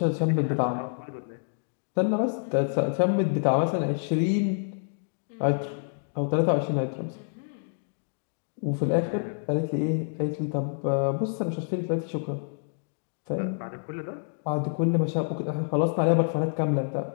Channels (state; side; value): silent; right; digital silence